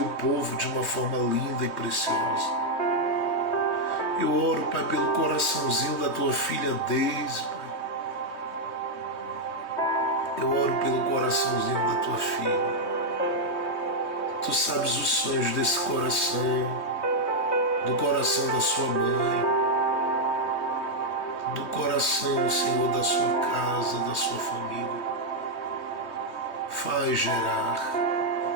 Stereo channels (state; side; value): late; right; 3.2 ms